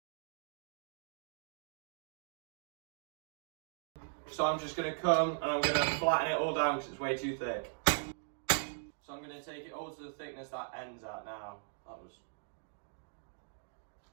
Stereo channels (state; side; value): silent; left; digital silence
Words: So I'm just going to come and I'm going to flatten it all down because it's way too thick. So I'm going to take it all to the thickness that ends at now. That was